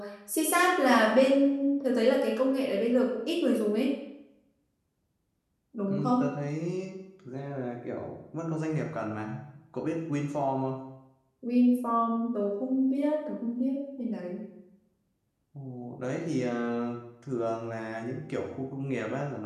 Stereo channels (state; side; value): identical; both; correlation 1.00